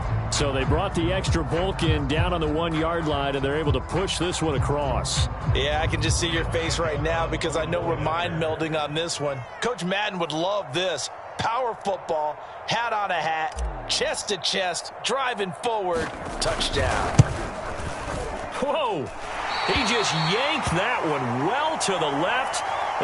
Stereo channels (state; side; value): identical; both; correlation 1.00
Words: So they brought the extra bulk in down on the 1-yard line, and they're able to push this one across. Yeah, I can just see your face right now because I know we're mind melding on this one. Coach Madden would love this. Power football, hat on a hat, chest to chest, driving forward, touchdown. Whoa! He just yanked that one well to the left